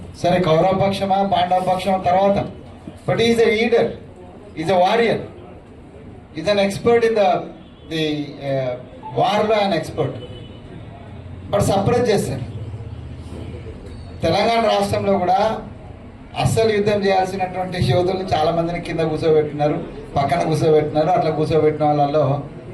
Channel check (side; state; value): both; identical; correlation 1.00